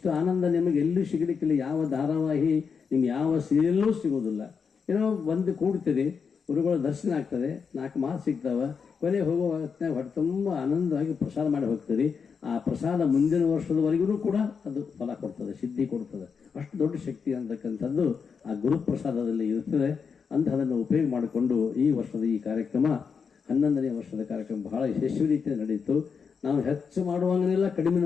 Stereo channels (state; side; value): quieter; right; 6.0 dB